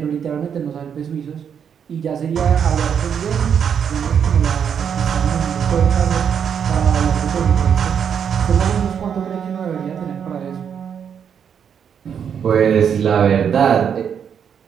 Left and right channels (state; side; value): quieter; left; 7.8 dB